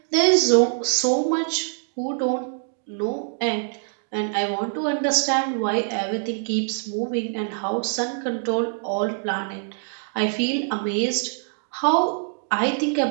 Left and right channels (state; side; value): silent; left; 60 dB below the other